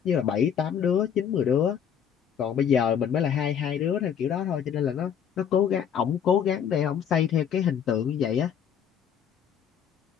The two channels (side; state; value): right; quieter; 8.3 dB